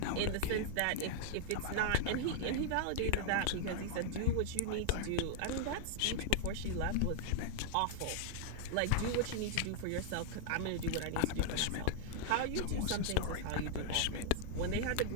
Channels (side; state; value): both; different; correlation -0.01